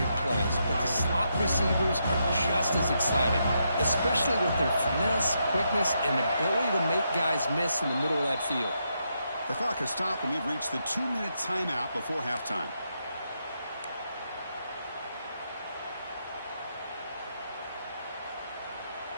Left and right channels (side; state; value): both; inverted; correlation -0.81